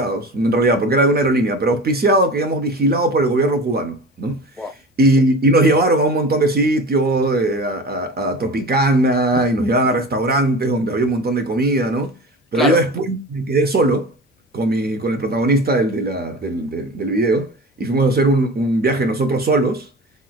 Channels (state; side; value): normal; both; correlation 0.34